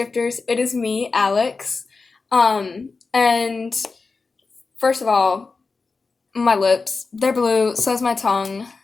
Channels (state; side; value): quieter; right; 4.2 dB